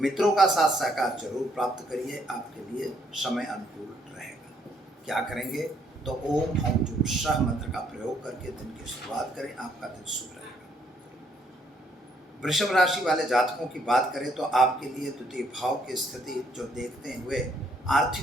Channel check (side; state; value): both; normal; correlation 0.69